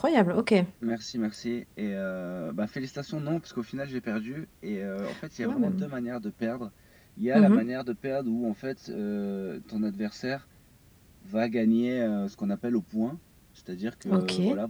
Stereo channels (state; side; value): identical; both; correlation 1.00